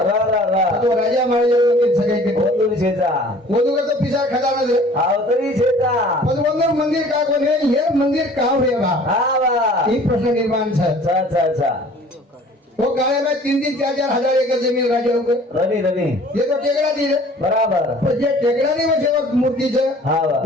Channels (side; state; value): both; normal; correlation 0.50